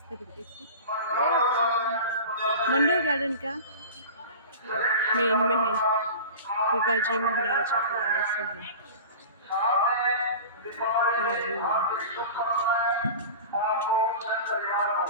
तरीके से। मंडोर गार्डन का मेन में है, गुगा जी महाराज वाले से है।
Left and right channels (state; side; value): inverted; both; correlation -0.34